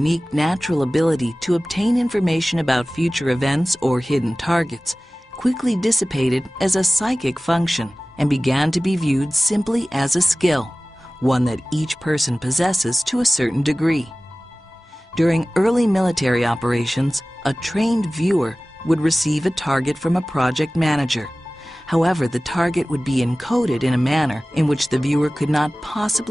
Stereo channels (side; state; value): both; normal; correlation 0.97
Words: natural ability to obtain information about future events or hidden targets quickly dissipated as a psychic function and began to be viewed simply as a skill, one that each person possesses to a certain degree. During early military operations, a trained viewer would receive a target from a project manager. However, the target would be encoded in a manner in which the viewer could not